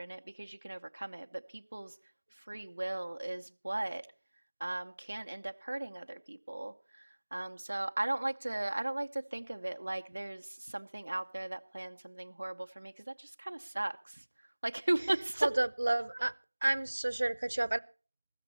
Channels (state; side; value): inverted; both; correlation -1.00